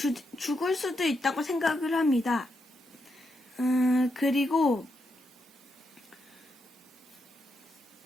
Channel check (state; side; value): normal; both; correlation 0.82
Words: 있다고 생각을 합니다. 그리고